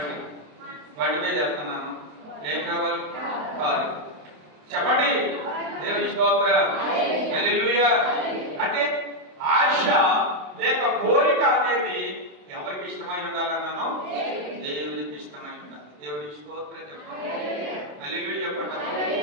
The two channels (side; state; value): left; late; 27 ms